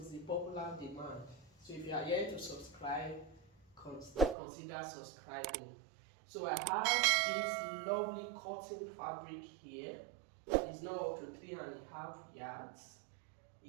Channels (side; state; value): left; drops out; at 4.4 s